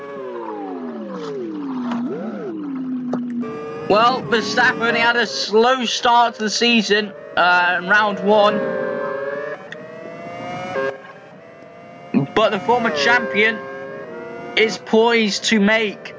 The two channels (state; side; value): identical; both; correlation 1.00